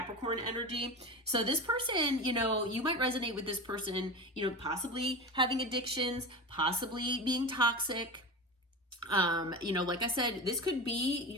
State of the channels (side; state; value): both; normal; correlation 0.26